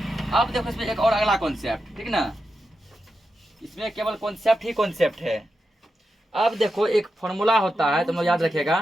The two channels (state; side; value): normal; both; correlation 0.88